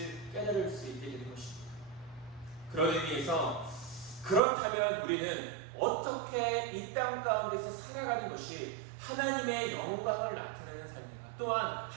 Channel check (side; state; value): left; drops out; at 4.4 s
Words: 깨달을 수 있게 되는 것입니다. 그런 의미에서 그렇다면 우리는 어떻게 이 땅 가운데서 살아가는 것이 하나님의 영광을 나타내는 삶인가, 또한